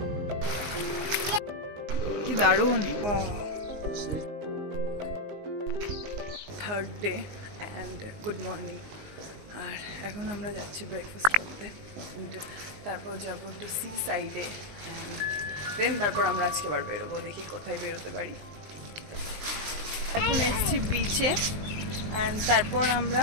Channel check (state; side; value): late; left; 19 ms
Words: কি দারুণ। Third day and good morning. আর এখন আমরা যাচ্ছি ব্রেকফাস্ট করতে, তারপর যাবো একটু সি সাইডে অ্যান্ড দেন তারপর আমরা আজকে আবার বেরোবো, দেখি কোথায় বেরোতে পারি। এখন এসেছি বিচে অ্যান্ড তারপর আমরা